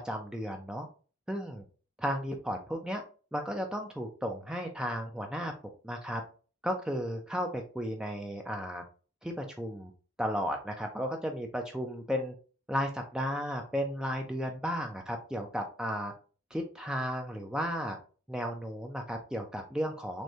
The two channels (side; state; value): both; normal; correlation 0.73